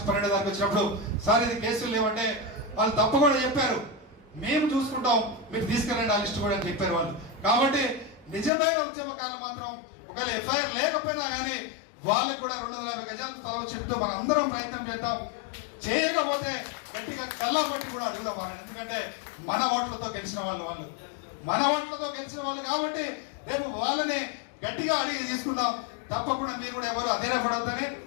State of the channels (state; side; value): drops out; right; at 8.5 s